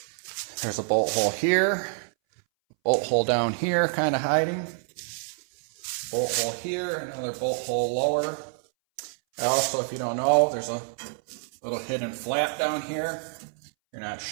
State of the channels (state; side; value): silent; left; 60 dB below the other